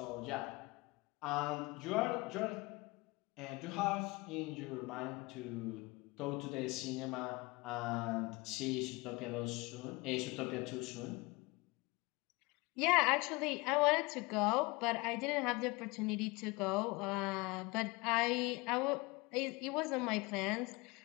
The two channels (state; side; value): quieter; right; 24.7 dB